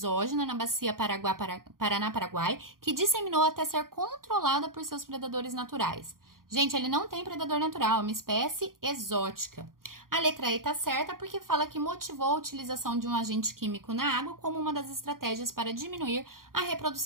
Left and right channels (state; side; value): late; left; 0.91 ms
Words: na bacia Paraná-Paraguai que disseminou até ser controlada por seus predadores naturais. Gente, ele não tem predador natural, é uma espécie exótica. A letra E tá certa porque fala que motivou a utilização de um agente químico na água como uma das estratégias para diminuir a